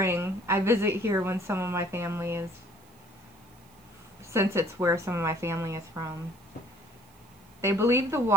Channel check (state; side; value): noise; right; hiss, 29 dB below the sound